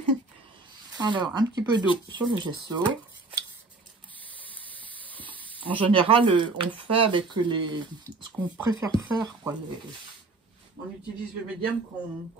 Alors, un petit peu d'eau sur le gesso. En général, on fait avec ce qu'on préfère faire, quoi. On utilise le médium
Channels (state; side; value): quieter; left; 3.5 dB